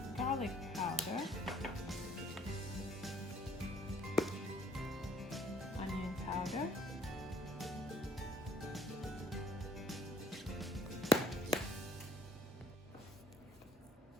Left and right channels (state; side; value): normal; both; correlation 0.60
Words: garlic powder, onion powder,